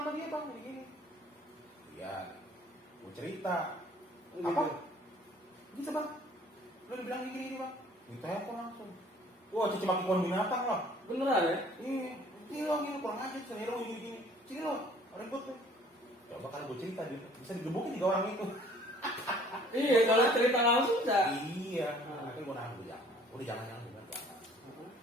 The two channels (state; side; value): normal; both; correlation 0.55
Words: sama dia bang? Gini. Iya, gue cerita. Apa? Bisa bang? Lo dibilang gini bang? Ditelepon langsung. Wah, cici maki pohon binatang loh. Beneran ya? Iya, ini lo gini kurang aja, sini lo gini. Sini lo, ribut tuh. Coba kalau gue cerita bisa digebukin 3 orang itu. Iya, kalau cerita langsung enggak. Iya. Akhirnya gue nahan gue jangan. Udah jangan jangan.